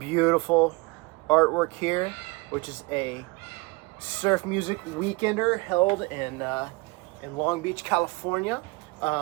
artwork here, which is a surf music weekender held in Long Beach, California,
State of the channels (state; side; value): quieter; left; 25.7 dB